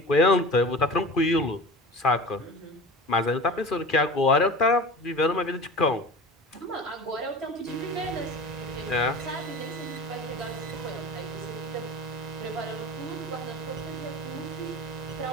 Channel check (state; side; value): normal; both; correlation 0.35